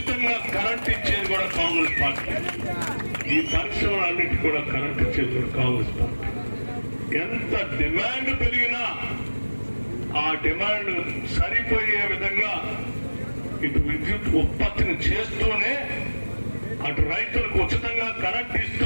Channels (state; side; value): inverted; both; correlation -1.00